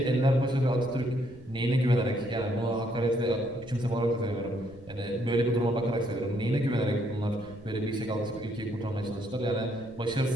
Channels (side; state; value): right; noise; rumble, 20 dB below the sound